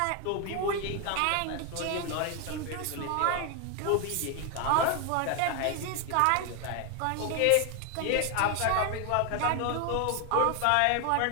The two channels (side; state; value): both; different; correlation 0.01